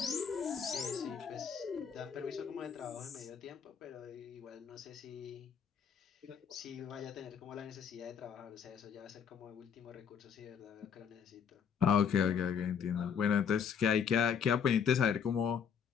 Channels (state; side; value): quieter; right; 7.2 dB